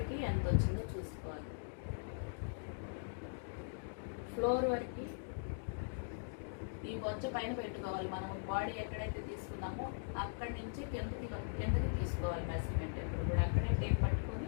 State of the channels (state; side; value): silent; right; digital silence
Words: ఎంత వచ్చిందో చూసుకోవాలి. ఫ్లోర్ వరకు ఈ బొజ్జ పైన పెట్టుకోవాలి. మనం బాడీ ఎక్కడైతే తీసుకున్నామో అక్కడి నుంచి కిందకి తీసుకోవాలి మెజర్మెంట్. ఎప్పుడు కూడా అక్కడే టేప్